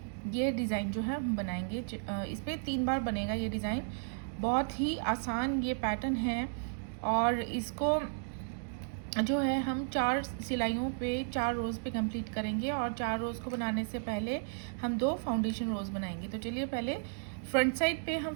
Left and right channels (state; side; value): silent; left; digital silence